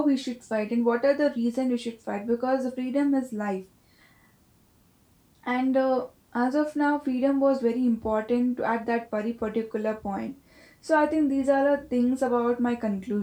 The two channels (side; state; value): both; identical; correlation 1.00